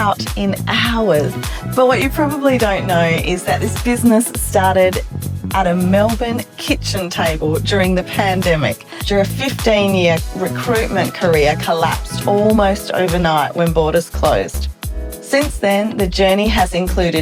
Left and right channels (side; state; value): both; identical; correlation 1.00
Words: in hours. But what you probably don't know is that this business started at a Melbourne kitchen table during the pandemic, after a 15-year recruitment career collapsed almost overnight when borders closed. Since then, the journey has